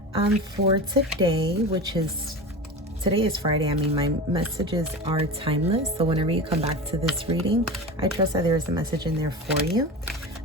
for today, today is Friday. I mean, my messages are timeless. So whenever you come back to this reading, I trust that there is a message in there for you.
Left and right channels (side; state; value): both; normal; correlation 0.29